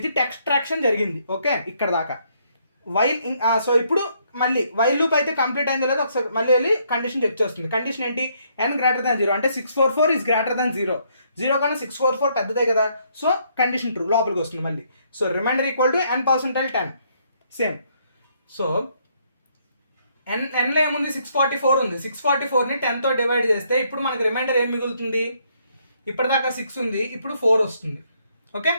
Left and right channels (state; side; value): inverted; both; correlation -0.70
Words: ఎక్స్ట్రాక్షన్ జరిగింది. ఓకే, ఇక్కడ దాకా వైల్. సో ఇప్పుడు మళ్ళీ వైల్ లూప్ అయితే కంప్లీట్ అయిందో లేదో ఒకసారి మళ్ళీ వెళ్ళి కండిషన్ చెక్ చేస్తుంది. కండిషన్ ఏంటి, n గ్రేటర్ దాన్ 0 అంటే 644 ఈజ్ గ్రేటర్ దాన్ 0. 0 కన్నా 644 పెద్దదే కదా. సో కండిషన్ ట్రూ, లోపలికి వస్తుంది మళ్ళీ. So remainder equal to n%10 same. So nలో ఏముంది, 644 ఉంది. 644ని 10తో డివైడ్ చేస్తే ఇప్పుడు మనకి రిమైండర్ ఏం మిగులుతుంది, ఇప్పటిదాకా 6 ఉంది, ఇప్పుడు 4 వస్తుంది. Okay,